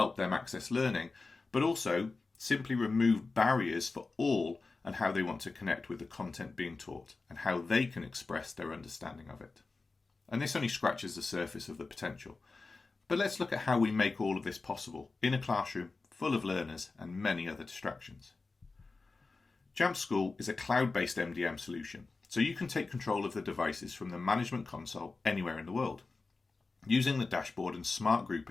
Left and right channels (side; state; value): right; quieter; 3.9 dB